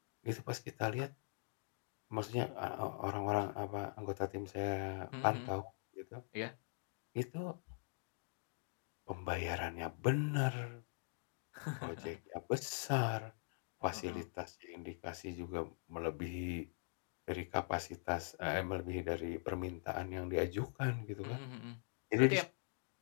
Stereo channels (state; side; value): silent; right; digital silence